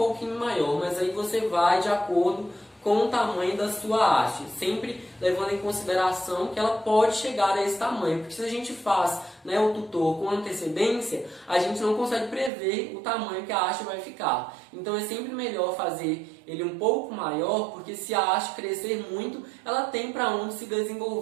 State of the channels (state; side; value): drops out; left; at 12.5 s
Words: maior, mas aí você vai de acordo com o tamanho da sua haste, sempre levando em consideração que ela pode chegar a esse tamanho, porque se a gente faz, né, o tutor com antecedência, a gente não consegue prever o tamanho que a haste vai ficar. Então é sempre melhor fazer ele um pouco maior, porque se a haste crescer muito, ela tem para onde se